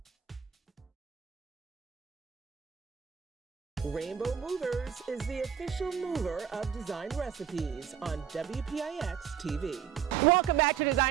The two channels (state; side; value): quieter; left; 8.5 dB